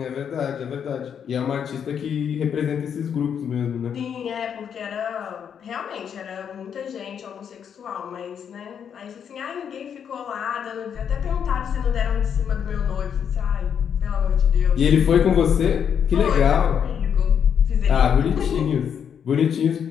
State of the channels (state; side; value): quieter; right; 7.9 dB